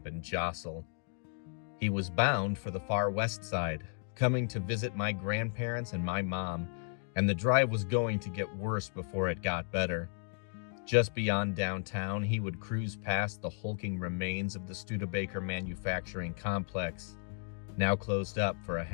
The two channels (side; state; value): right; silent; 55 dB below the other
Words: and jostle. He was bound for the far west side, coming to visit my grandparents and my mom, and the drive was going to get worse before it got better. Just beyond downtown, he would cruise past the hulking remains of the Studebaker manufacturing complex, now closed up for a